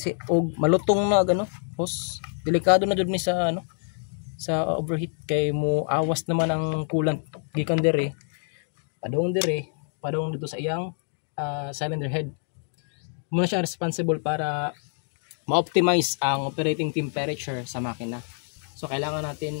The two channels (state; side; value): silent; right; 57 dB below the other